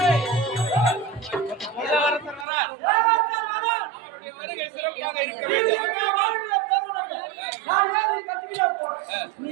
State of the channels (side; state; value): left; drops out; at 2.5 s